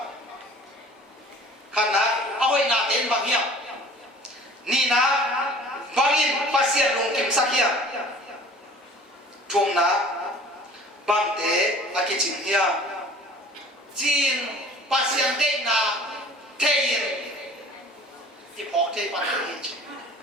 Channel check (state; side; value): normal; both; correlation 0.47